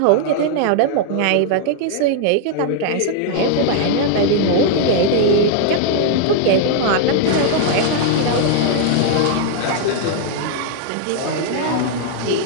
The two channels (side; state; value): both; different; correlation 0.00